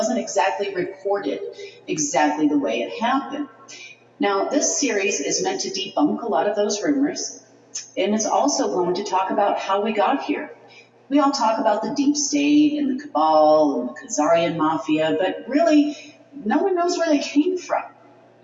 exactly reported exactly the way it happened. Now, this series is meant to debunk a lot of those rumors, and it's also going to talk about how we got here. We all talk about the deep state and the cabal and the Khazarian mafia, but really, no one knows where they came from.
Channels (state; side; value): identical; both; correlation 1.00